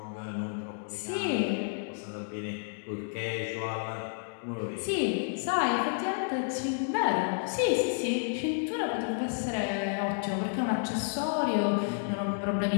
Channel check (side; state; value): right; silent; digital silence